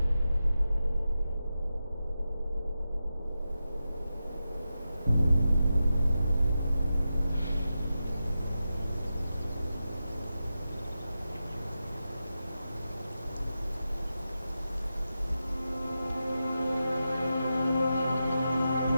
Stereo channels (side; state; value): both; inverted; correlation -0.91